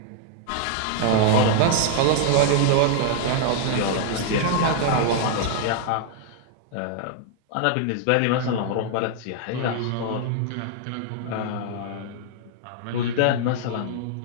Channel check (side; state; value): both; different; correlation 0.00